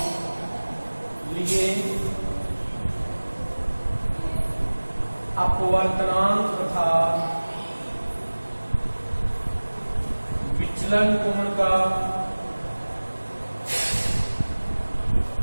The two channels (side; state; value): both; inverted; correlation -1.00